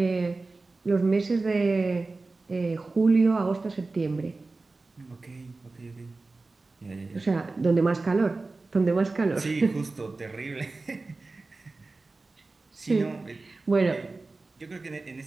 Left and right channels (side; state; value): left; quieter; 3.5 dB